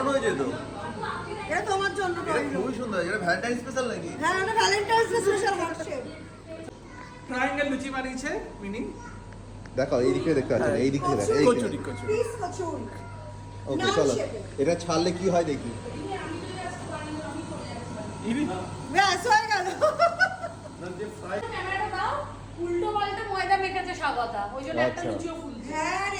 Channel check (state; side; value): identical; both; correlation 1.00